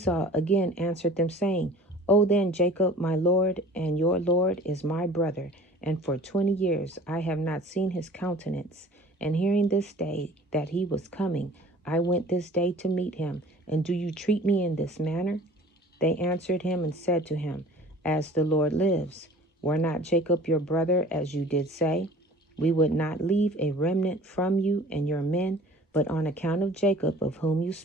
again answered them, saying, O then, Jacob, my lord, and your lord is my brother, and for 20 years I have not seen his countenance. And hearing this day that he was coming, I went this day to meet him. And do you treat me in this manner? They answered him and said to him, As the Lord lives, were not Jacob your brother, as you did say? We would not leave a remnant from you and your men, but on account of Jacob, of whom you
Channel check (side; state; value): both; normal; correlation 0.46